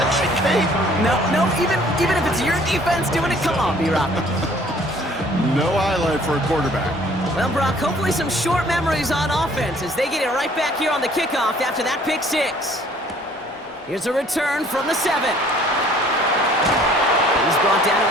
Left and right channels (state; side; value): normal; both; correlation 0.56